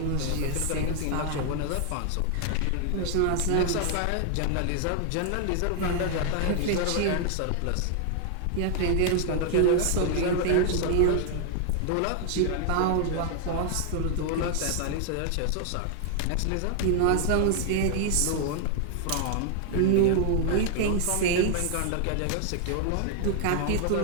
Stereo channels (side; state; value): both; different; correlation 0.00